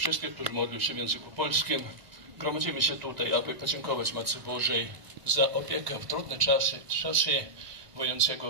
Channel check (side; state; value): left; late; 1.5 ms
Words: którzy modlą się w języku polskim. Gromadzimy się tutaj, aby podziękować Matce Bożej za opiekę w trudne czasy wojennego